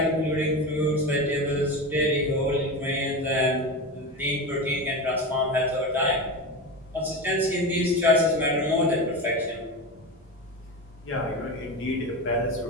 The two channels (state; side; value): normal; both; correlation 0.23